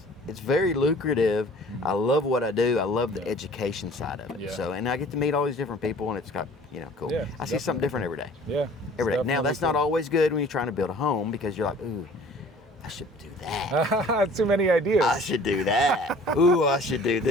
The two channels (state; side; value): normal; both; correlation 0.50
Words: very lucrative. I love what I do. I love the education side of it. Yeah. So, and I get to meet all these different people, and it's got, cool. Yeah, I see something different every day. Yeah. Every day. Now, that's not always good when you're trying to build a home, because you're like, ooh, I should do that. Too many ideas. I should do that. Ooh, I should do